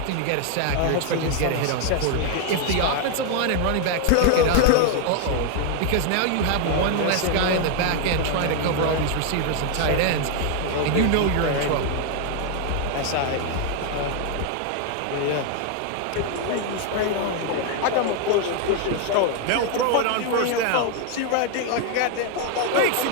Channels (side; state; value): both; different; correlation 0.00